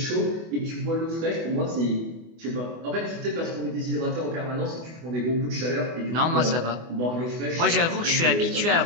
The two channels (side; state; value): left; late; 24 ms